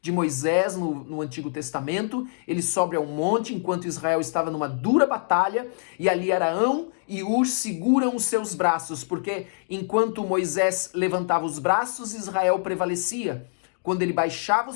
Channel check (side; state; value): right; silent; digital silence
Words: Moisés no Antigo Testamento. Ele sobe ao monte enquanto Israel estava numa dura batalha e ali Arão e Ur seguram os seus braços, porque enquanto Moisés levantava os braços, Israel prevalecia. Quando ele baixava os